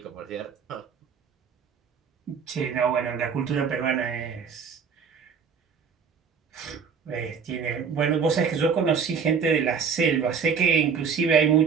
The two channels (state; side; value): quieter; left; 6.3 dB